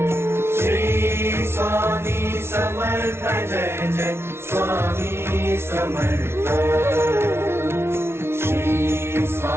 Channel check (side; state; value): left; late; 0.12 ms